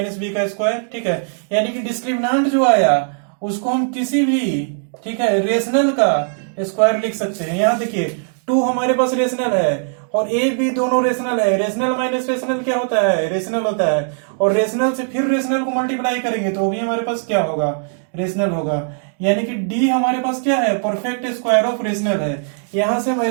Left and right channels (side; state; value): left; silent; digital silence